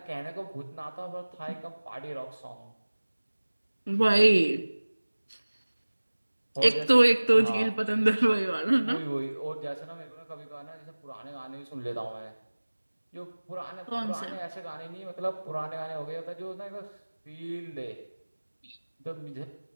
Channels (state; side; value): inverted; both; correlation -1.00